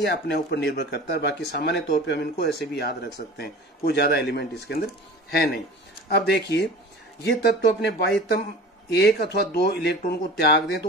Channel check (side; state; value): both; normal; correlation 0.39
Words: अपने ऊपर निर्भर करता है। बाकी सामान्य तौर पे हम इनको ऐसे भी याद रख सकते हैं, कोई ज्यादा एलिमेंट इसके अंदर है नहीं। अब देखिए ये तत्व अपने बाह्यतम 1 अथवा 2 इलेक्ट्रॉन को त्याग दें तो